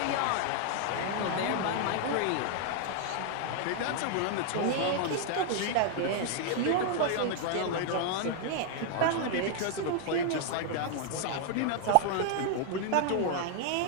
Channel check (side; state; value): both; different; correlation 0.00